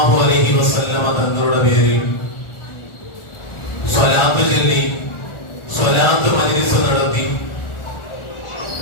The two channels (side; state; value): right; late; 1.4 ms